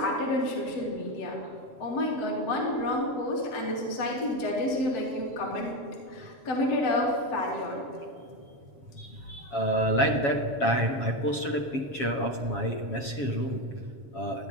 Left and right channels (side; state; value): right; late; 7.3 ms